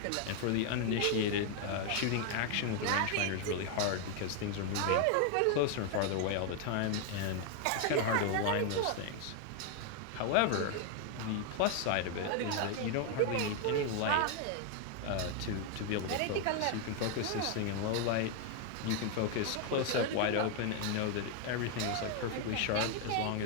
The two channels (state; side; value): different; both; correlation 0.01